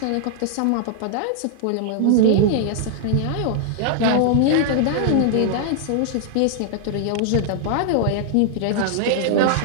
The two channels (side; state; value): both; different; correlation -0.01